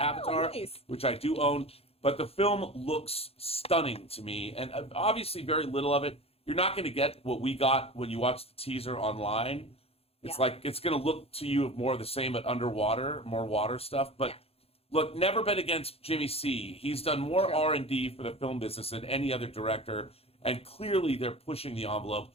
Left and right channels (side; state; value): right; late; 0.29 ms